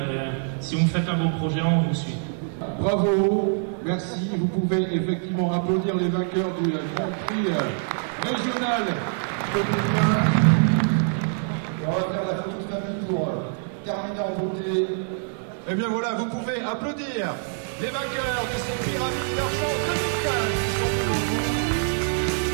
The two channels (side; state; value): left; silent; 62 dB below the other